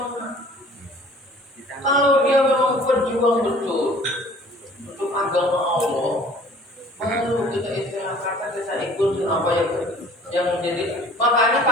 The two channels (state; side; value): normal; both; correlation 0.51